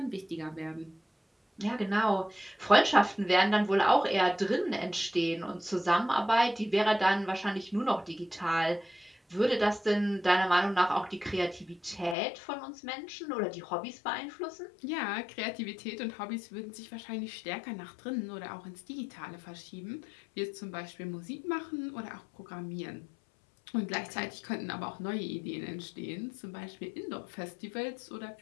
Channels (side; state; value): right; drops out; at 12.2 s